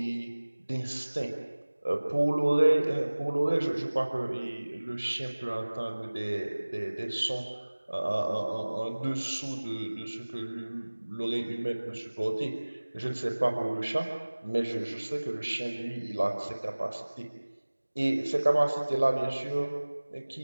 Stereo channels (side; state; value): both; inverted; correlation -1.00